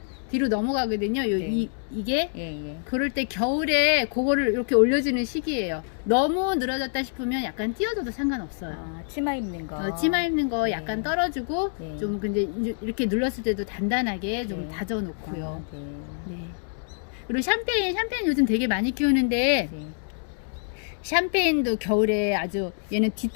뒤로 넘어가거든요. 네. 이게 예. 그럴 때 겨울에 그거를 이렇게 올려주는 시기예요. 너무 늘어졌다 싶으면 약간 띄워줘도 상관없어요. 아, 치마 입는 거. 치마 입는 거 네. 약간 떨어주고 네. 좀 근데 이렇게 눌렀을 때도 단단하게 좀 네. 다져놓고요. 아, 네. 네. 그리고 샴페인 요즘 되게 많이 키우는데 네. 샴페인도 겨울에 아주 얘는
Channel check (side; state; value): right; silent; 61 dB below the other